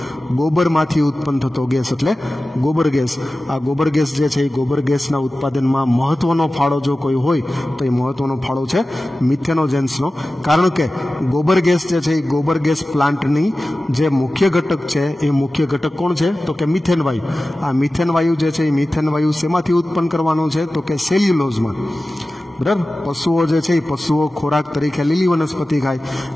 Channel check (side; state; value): both; normal; correlation 0.95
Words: ગોબરમાંથી ઉત્પન્ન થતો ગેસ એટલે ગોબર ગેસ. આ ગોબર ગેસ જે છે એ ગોબર ગેસના ઉત્પાદનમાં મહત્વનો ફાળો જો કોઈ હોય તો એ મહત્વનો ફાળો છે મિથેનોજેન્સનો. કારણ કે ગોબર ગેસ જે છે એ ગોબર ગેસ પ્લાન્ટની જે મુખ્ય ઘટક છે એ મુખ્ય ઘટક કોણ છે તો કે મિથેન વાયુ. આ મિથેન વાયુ જે છે એ મિથેન વાયુ શેમાંથી ઉત્પન્ન કરવાનો છે તો કે સેલ્યુલોઝમાં, બરાબર. પશુઓ જે છે એ પશુઓ ખોરાક તરીકે લીલી વનસ્પતિ ખાય.